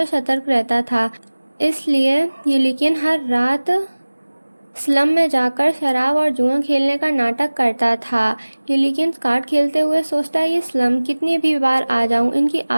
सतर्क रहता था। इसलिए यूलिकियन हर रात स्लम में जाकर शराब और जुआ खेलने का नाटक करता था। यूलिकियन कार्ड खेलते हुए सोचता है ये स्लम कितनी भी बार आ जाऊं इनकी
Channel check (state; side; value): inverted; both; correlation -1.00